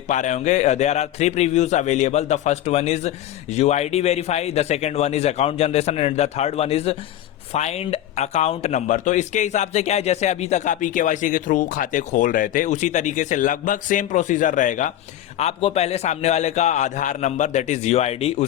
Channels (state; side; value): quieter; right; 12.3 dB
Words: पा रहे होंगे there are 3 previews available. The first one is UID verify, the second one is account generation, and the third one is find account number. तो इसके हिसाब से क्या है, जैसे अभी तक आप eKYC के थ्रू खाते खोल रहे थे, उसी तरीके से लगभग सेम प्रोसीजर रहेगा। आपको पहले सामने वाले का आधार नंबर, दैट इज यूआईडी,